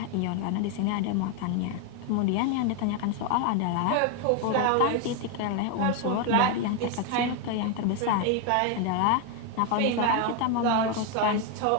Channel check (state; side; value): different; both; correlation 0.01